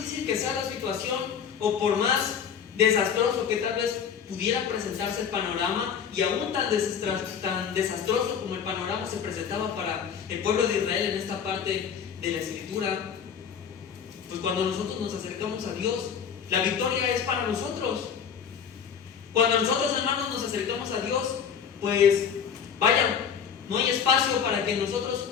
que sea la situación, o por más desastroso que tal vez pudiera presentarse el panorama, y aún tan desastroso como el panorama se presentaba para el pueblo de Israel en esta parte de la escritura, pues cuando nosotros nos acercamos a Dios, la victoria es para nosotros. Cuando nosotros, hermanos, nos acercamos a Dios, pues vaya, no hay espacio para que nosotros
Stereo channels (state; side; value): quieter; right; 7.5 dB